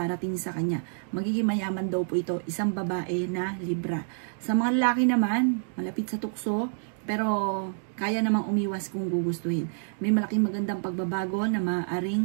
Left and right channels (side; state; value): left; silent; digital silence